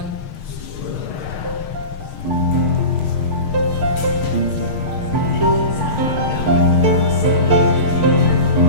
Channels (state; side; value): late; right; 6.5 ms